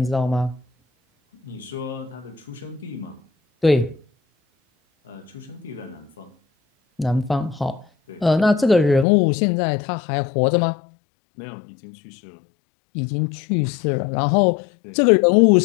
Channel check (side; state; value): right; drops out; at 9.1 s